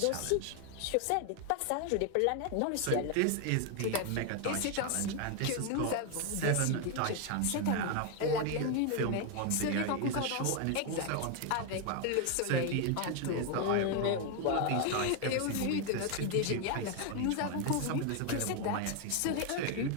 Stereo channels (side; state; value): both; different; correlation 0.01